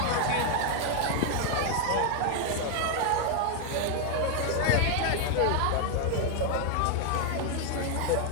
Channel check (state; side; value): different; both; correlation 0.00